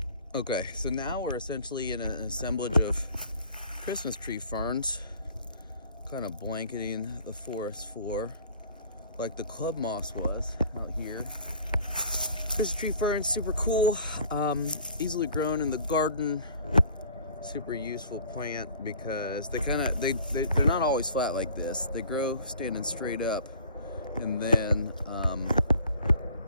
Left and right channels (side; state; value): both; inverted; correlation -0.50